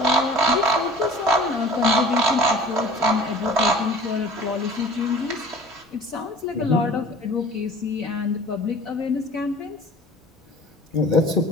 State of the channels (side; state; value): both; normal; correlation 0.45